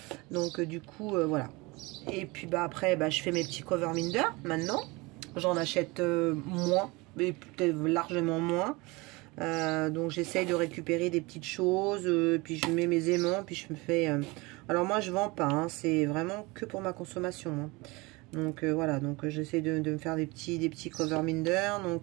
Donc du coup voilà. Et puis bah après bah, je fais mes petits cover minder maintenant. J'en achète moins, mais peut-être largement moins. Donc j'essaye de récupérer des petites choses, puis je mets mes aimants, puis je me fais... Alors moi je vends pas, hein, c'est vraiment que pour ma consommation. Hein. Donc voilà, donc j'essaie de me faire des petits cover minder.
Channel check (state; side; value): quieter; left; 24.4 dB